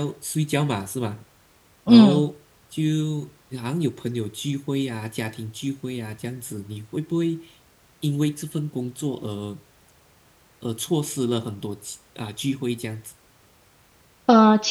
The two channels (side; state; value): both; identical; correlation 1.00